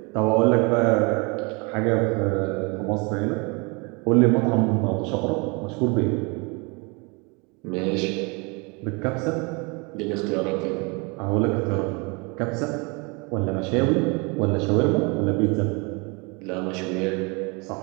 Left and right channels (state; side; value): quieter; left; 29.8 dB